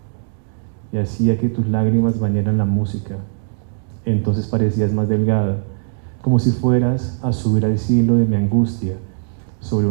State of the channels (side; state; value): left; silent; digital silence